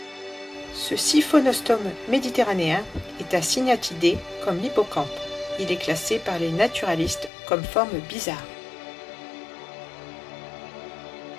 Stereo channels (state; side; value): drops out; right; at 7.3 s